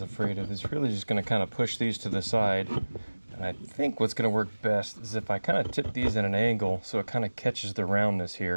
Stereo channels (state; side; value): inverted; both; correlation -1.00